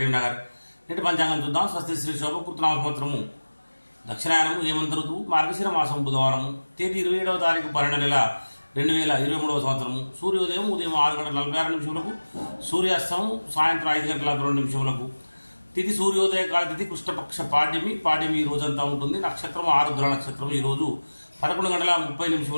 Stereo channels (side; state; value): both; inverted; correlation -1.00